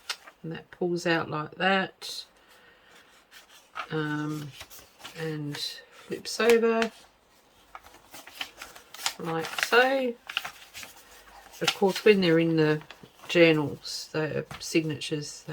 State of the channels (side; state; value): both; identical; correlation 1.00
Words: and that pulls out like that, and flips over like so. Of course, when they're in the journals, the signatures,